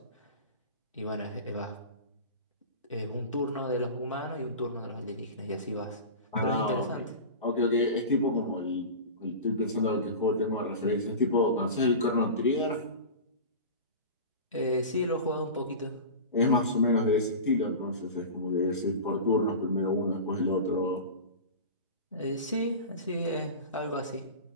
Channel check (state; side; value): inverted; both; correlation -0.31